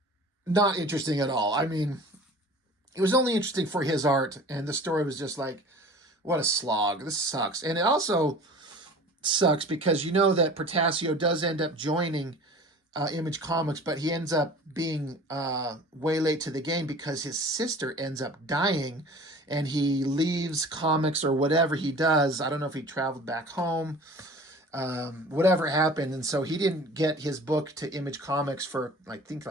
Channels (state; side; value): normal; both; correlation 0.42